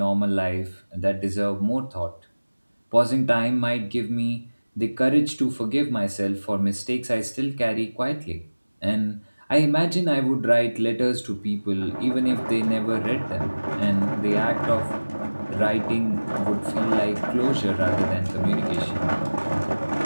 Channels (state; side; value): inverted; both; correlation -1.00